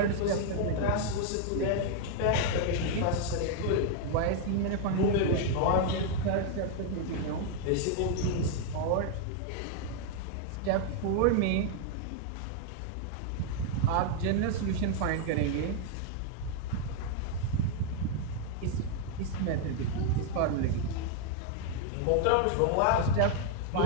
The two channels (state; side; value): different; both; correlation 0.00